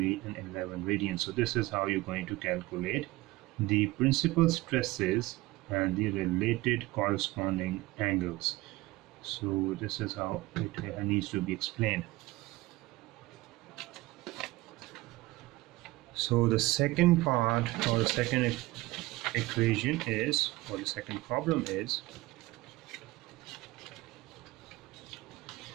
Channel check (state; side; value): quieter; left; 19.8 dB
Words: and 11 radian. So this is how you're going to calculate the principal stresses and the related corresponding angles. So this is how it needs to be explained. So the second part, or the second equation is, or the second problem is,